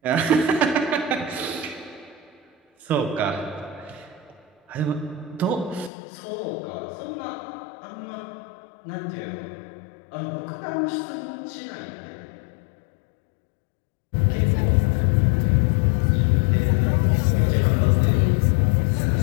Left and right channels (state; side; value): drops out; right; at 5.9 s